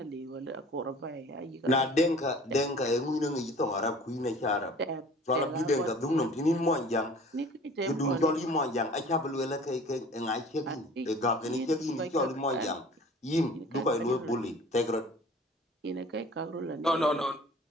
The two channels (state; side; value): normal; both; correlation 0.47